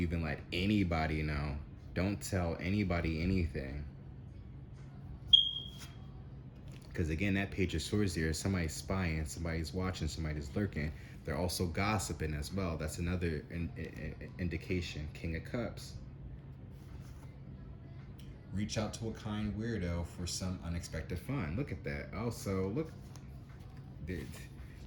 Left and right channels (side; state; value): both; identical; correlation 1.00